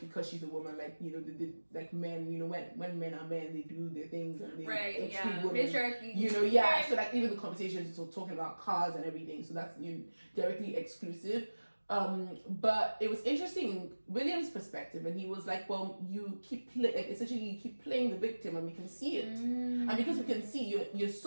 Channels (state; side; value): inverted; both; correlation -1.00